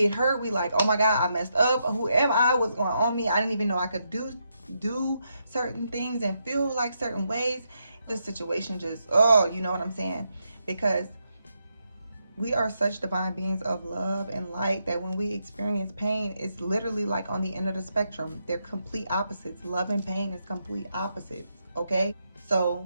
hurt. We like, oh my God, I messed up. Who am I? What's going on me? I didn't even know I could do certain things and feel like certain ways. The situation just, oh, you know what I'm saying? Because we are such divine beings of love and light that when we experience pain, it's literally like on the end of the spectrum. They're complete opposites. Love and pain is complete opposites, okay? So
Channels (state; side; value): inverted; both; correlation -0.81